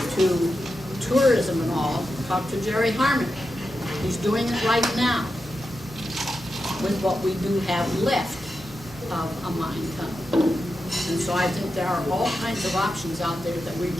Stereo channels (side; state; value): both; normal; correlation 0.89